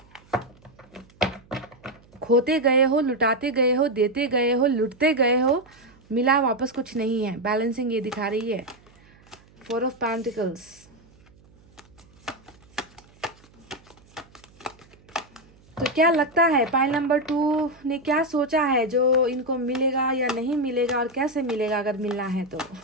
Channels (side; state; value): right; noise; hum, 28 dB below the sound